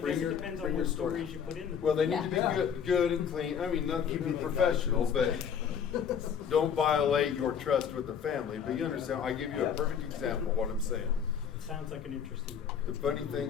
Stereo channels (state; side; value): quieter; right; 7.6 dB